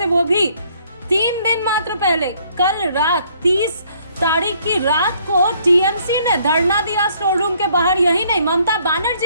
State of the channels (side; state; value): both; inverted; correlation -0.64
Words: वो भी 3 दिन मात्र पहले। कल रात 30 तारीख की रात को टीएमसी ने धरना दिया स्टोर रूम के बाहर। यही नहीं, ममता